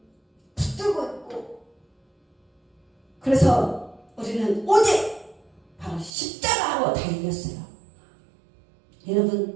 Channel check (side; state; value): left; drops out; at 6.1 s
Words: 붙들고 있고 그래서 우리는 오직 바로 십자가로 다 이겼어요.